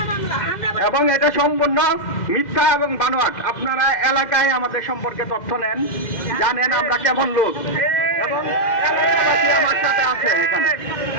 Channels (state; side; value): late; right; 2.1 ms